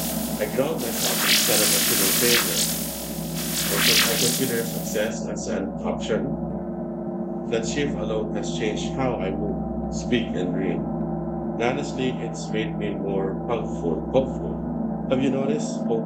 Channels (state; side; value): identical; both; correlation 1.00